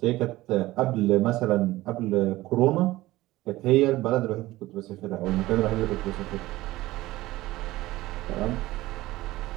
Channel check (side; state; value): left; quieter; 17.5 dB